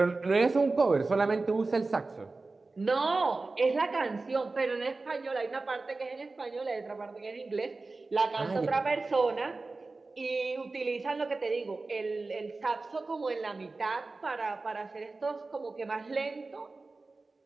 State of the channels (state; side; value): quieter; left; 3.6 dB